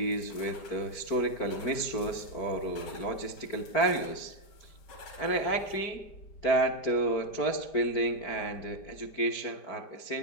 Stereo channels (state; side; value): late; right; 5.0 ms